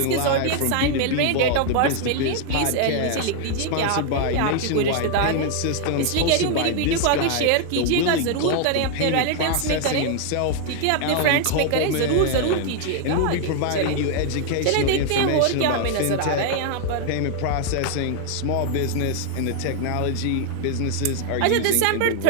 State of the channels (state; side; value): different; both; correlation 0.00